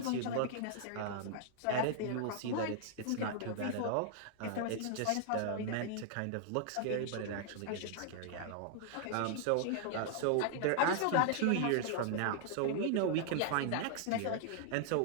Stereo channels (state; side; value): different; both; correlation -0.01